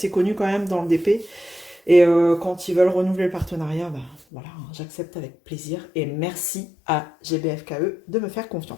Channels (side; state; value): right; drops out; at 4.2 s